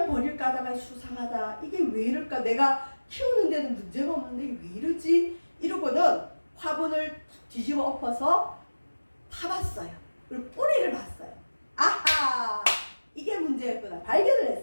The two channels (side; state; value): both; inverted; correlation -1.00